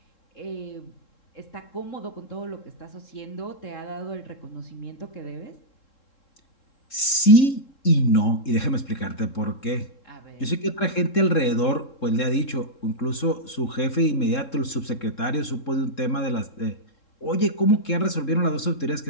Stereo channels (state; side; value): late; right; 3.7 ms